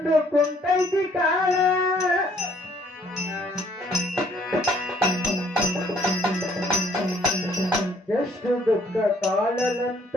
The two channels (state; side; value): normal; both; correlation 0.62